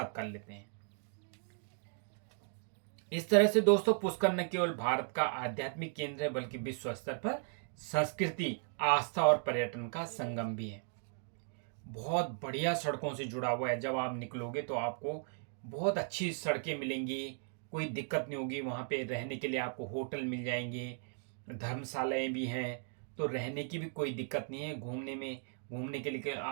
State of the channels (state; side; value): silent; left; 53 dB below the other